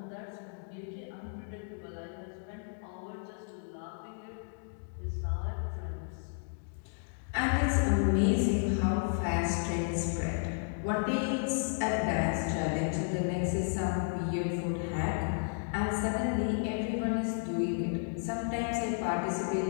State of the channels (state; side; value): silent; right; digital silence